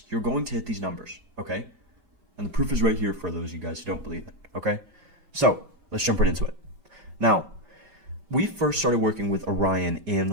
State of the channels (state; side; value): late; left; 5.1 ms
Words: you're going to hit these numbers, okay? And the proof is right here for those of you guys who don't believe it, okay? So let's jump right into it. Now, we first started working with Orien